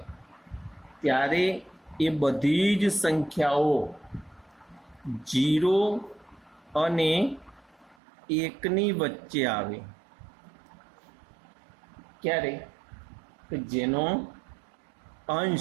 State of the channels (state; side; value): drops out; left; at 8.0 s